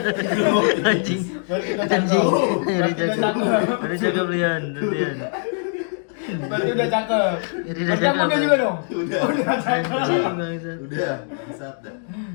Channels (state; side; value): silent; right; 59 dB below the other